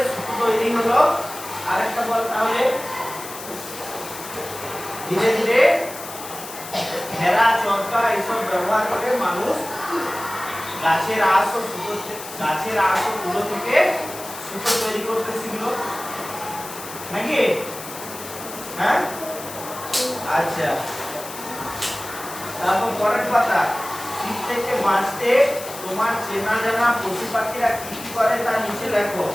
সুতো তৈরি হলো, আরেকটা বল তাহলে ধীরে ধীরে ঘেরা চরকা এসব ব্যবহার করে মানুষ গাছের আঁশ ও তুলো থেকে সুতো তৈরি করতে শিখলো নাকি? হ্যাঁ, আচ্ছা। তারপর পরের পাতা, শীত থেকে বাঁচতে তোমার চেনা জানা পশু পাখিরা কি কি করে তা নিচে লেখো।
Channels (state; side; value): noise; left; hiss, 12 dB below the sound